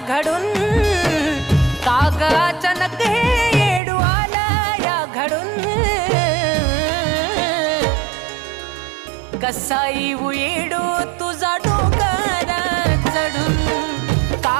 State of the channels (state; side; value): drops out; left; at 3.8 s